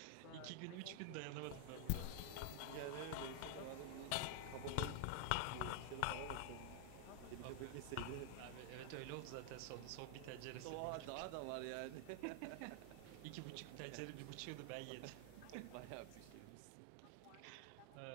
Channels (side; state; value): both; different; correlation 0.00